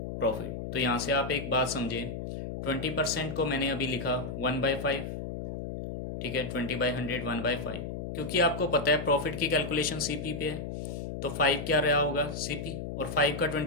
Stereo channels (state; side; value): noise; left; hum, 6 dB below the sound